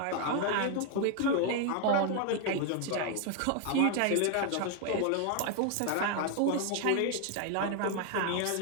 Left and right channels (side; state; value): both; different; correlation 0.00